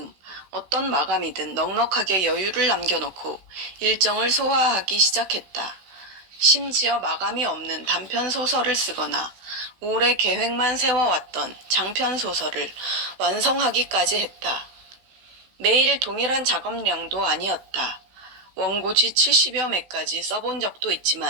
어떤 마감이든 넉넉하게 여유를 남겨놓고 일정을 소화하기 시작했다. 심지어 마감이 없는 단편 소설을 쓰거나 오래 계획만 세워왔던 장편 소설을 완성하기까지 했다. 매일 동일한 작업량도 아니었다. 원고지 70여 매까지 써본 적도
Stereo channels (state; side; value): late; left; 16 ms